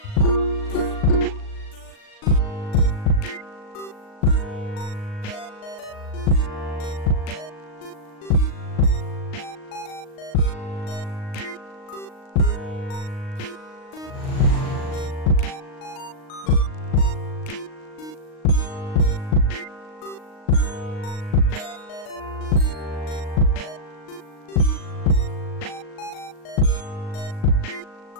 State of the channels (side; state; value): right; late; 38 ms